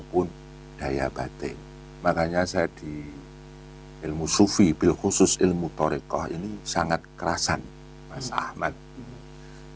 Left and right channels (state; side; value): identical; both; correlation 1.00